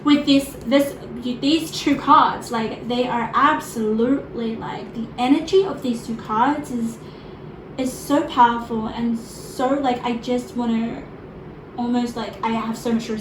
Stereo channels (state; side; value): identical; both; correlation 1.00